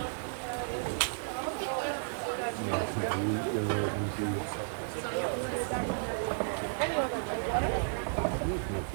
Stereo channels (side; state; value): left; silent; digital silence